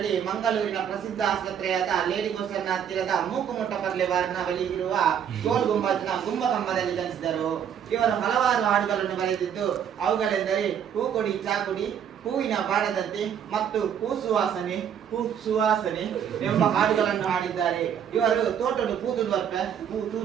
ಮಂಗಳೂರಿನ ಪ್ರಸಿದ್ಧ ಆಸ್ಪತ್ರೆಯಾದ ಲೇಡಿ ಗೋಸರ್ನ ಹತ್ತಿರದ ಮೂಕುಮುಟ್ಟ ಪರ್ಲೆವಾರಿನ ಬಳಿ ಇರುವ ಗೋಲ್ ಗುಂಬಜ್ನ ಗುಂಬಕಂಬದಲ್ಲಿ ಜನಿಸಿದರು. ಇವರು ಹಲವಾರು ಹಾಡುಗಳನ್ನು ಬರೆದಿದ್ದು ಅವುಗಳೆಂದರೆ ಹೂ ಕೊಡಿ ಚಾಕುಡಿ, ಹೂವಿನ ಬಾಡದಂತೆ ಮತ್ತು ಹೂ ಸುವಾಸನೆ ಎಂಬ ಹಾಡುಗಳನ್ನು ಹಾಡಿದ್ದಾರೆ. ಇವರು ತೋಟಡು ತೂದು ಬರ್ಪೆ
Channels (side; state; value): left; quieter; 8.6 dB